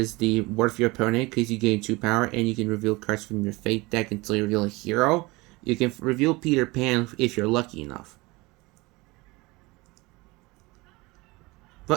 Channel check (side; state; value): left; quieter; 23.1 dB